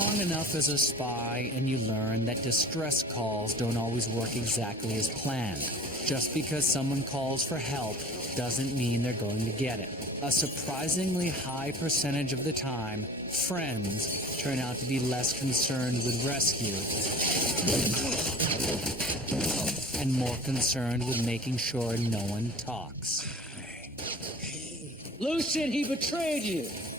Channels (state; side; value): normal; both; correlation 0.42